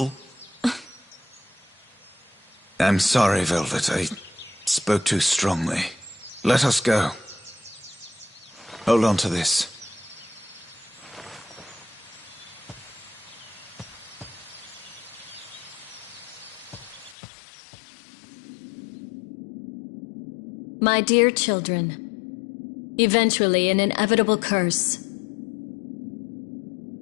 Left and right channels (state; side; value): drops out; right; at 17.2 s